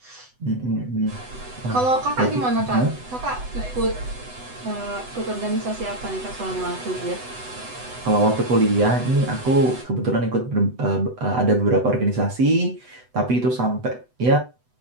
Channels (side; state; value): left; late; 8.0 ms